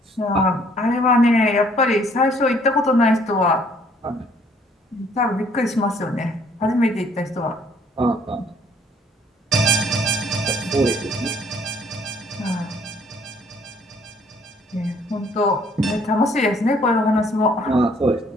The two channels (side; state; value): both; normal; correlation 0.62